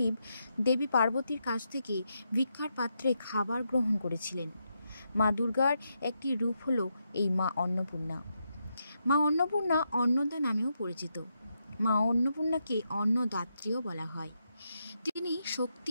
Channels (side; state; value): both; inverted; correlation -0.83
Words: দেবী পার্বতীর কাছ থেকে ভিক্ষার পাত্রে খাবার গ্রহণ করেছিলেন। মা দুর্গার একটি রূপ হলো এই মা অন্নপূর্ণা। মা অন্নপূর্ণা অন্নদা নামেও পরিচিত। মা অন্নপূর্ণাকে অন্নদাত্রীও বলা হয়। তিনি